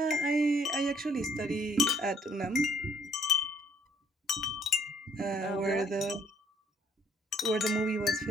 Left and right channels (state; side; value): normal; both; correlation 0.64